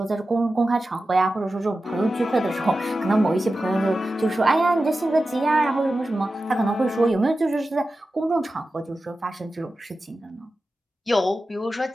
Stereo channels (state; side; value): normal; both; correlation 0.93